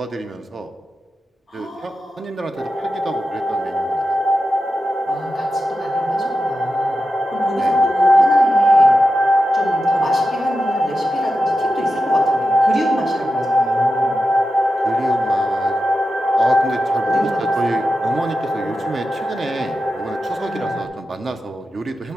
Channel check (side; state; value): both; normal; correlation 0.91